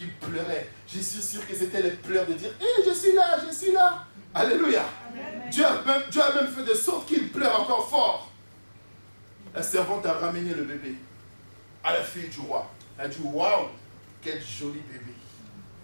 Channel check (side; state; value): both; inverted; correlation -1.00